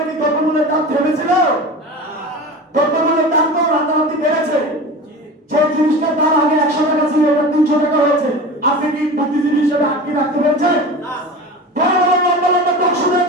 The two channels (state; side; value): normal; both; correlation 0.32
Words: কি দ্রব্যমূল্যের দাম থেমেছিল? দ্রব্যমূল্যের দাম তো রাতারাতি বেড়েছে। যে জিনিসটার দাম আগে 100 টাকা ছিল, এটা 300 টাকা হয়েছে। আপনি কি বুদ্ধিজীবী হিসেবে আটকে রাখতে পেরেছেন? বড় বড় লম্বা লম্বা দর্শনের